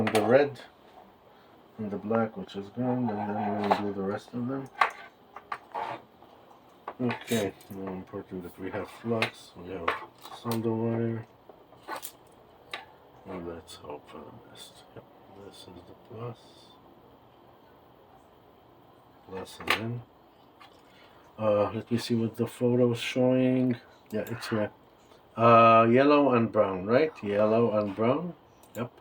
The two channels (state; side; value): identical; both; correlation 1.00